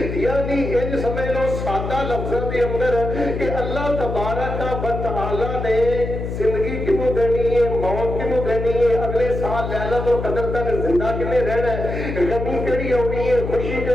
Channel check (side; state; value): left; noise; hum, 5 dB below the sound